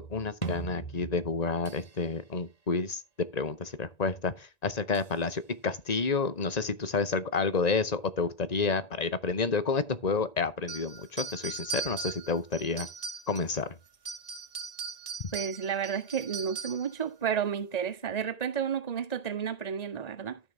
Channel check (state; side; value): late; right; 1.9 ms